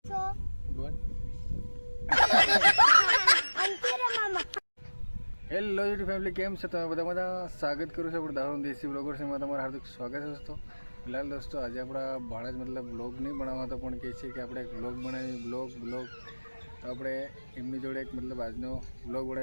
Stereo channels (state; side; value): inverted; both; correlation -1.00